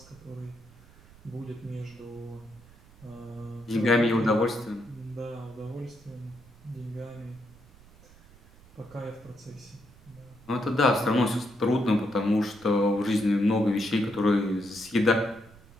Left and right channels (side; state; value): right; noise; rumble, 24 dB below the sound